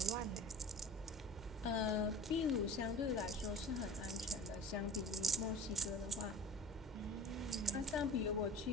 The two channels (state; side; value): normal; both; correlation 0.39